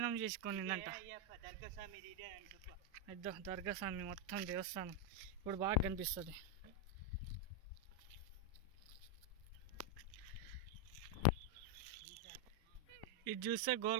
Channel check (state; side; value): normal; both; correlation 0.02